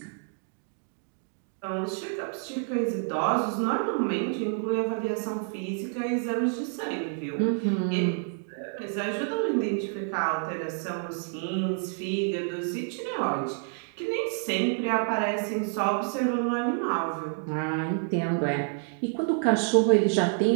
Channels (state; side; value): silent; left; 57 dB below the other